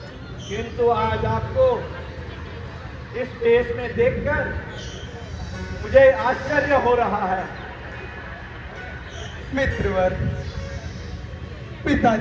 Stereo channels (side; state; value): both; identical; correlation 1.00